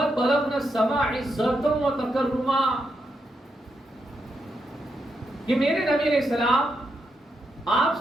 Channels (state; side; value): normal; both; correlation 0.82